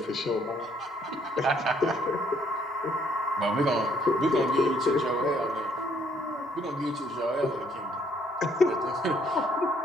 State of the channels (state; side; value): normal; both; correlation 0.67